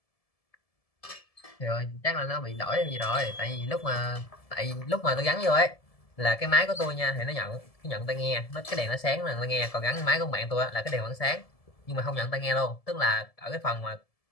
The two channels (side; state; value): right; late; 1.7 ms